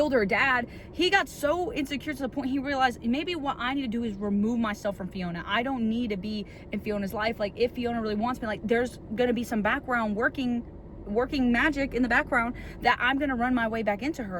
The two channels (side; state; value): both; identical; correlation 1.00